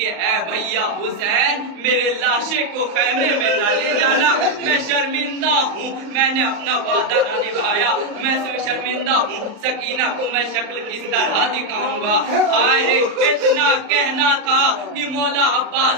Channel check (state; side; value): late; left; 35 ms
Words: اے بھیا حسین میرے لاشے کو خیمے میں نہ لے جانا, میں شرمندہ ہوں, میں نے اپنا وعدہ نہ نبھایا, میں شرمندہ ہوں. سکینہ کو میں شکل کس طرح دکھاؤں گا. آئے رے اتنا کہنا تھا کہ مولا